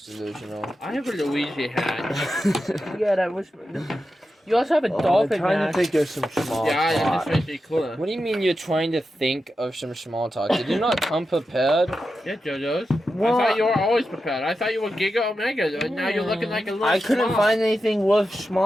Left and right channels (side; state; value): both; normal; correlation 0.90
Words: delusional. I have a Luigi hat. Yeah, that was... You also have a I'm dolphin trying hat. to think of some small Yeah, that talk. just makes me cooler. What do you mean you're trying to think of some small talk? Did you not come prepared? Yeah, Jojos. Well, I thought you were always prepared. I thought you were Giga Omega, and now you're looking like a little I couldn't small. find anything worth